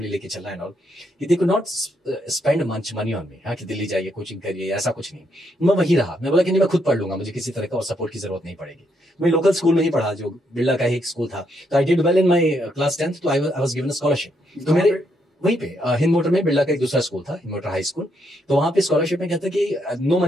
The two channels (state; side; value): normal; both; correlation 0.76